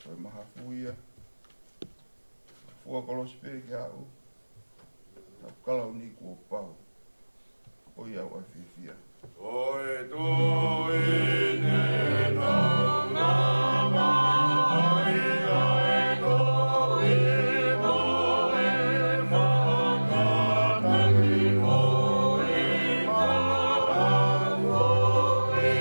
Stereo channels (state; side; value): inverted; both; correlation -1.00